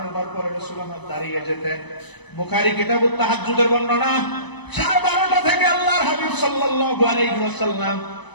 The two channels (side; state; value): right; late; 1.0 ms